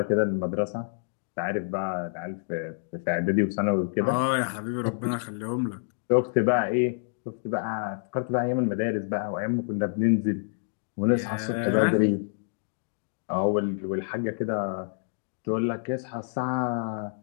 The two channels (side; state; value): right; silent; digital silence